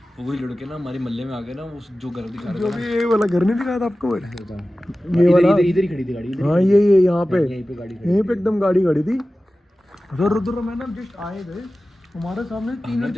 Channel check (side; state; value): both; normal; correlation 0.96